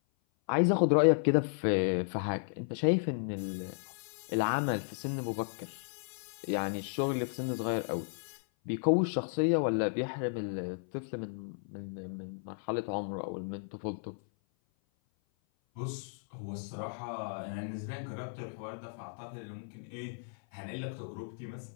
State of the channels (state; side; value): silent; right; 55 dB below the other